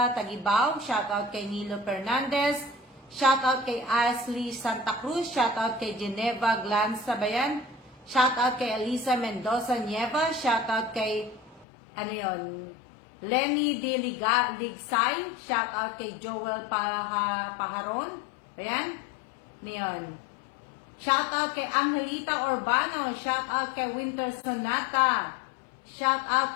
Tagibaw. Shout out kay Nilo Fernandez. Shout out kay Ashley Santa Cruz. Shout out kay Geneva Glanza Bayan. Shout out kay Elisa Mendoza Nieva. Shout out kay, Lenny De Ligsay. Shout out kay Joel Paharon. Ayan. Niyon. Shout out kay Angelita Urbano. Shout out kay Winter Sonata. Shout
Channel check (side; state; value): right; drops out; at 11.7 s